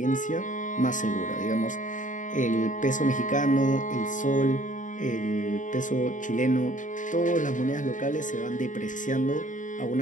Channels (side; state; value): right; late; 0.37 ms